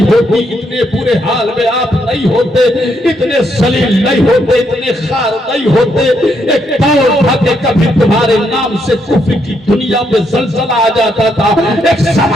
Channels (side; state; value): both; normal; correlation 0.76